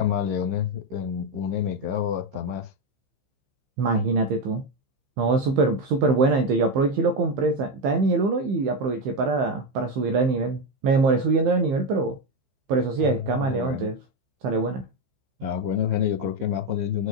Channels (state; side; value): late; left; 15 ms